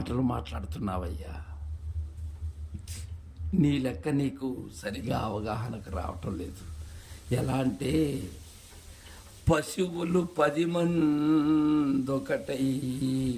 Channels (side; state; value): both; identical; correlation 1.00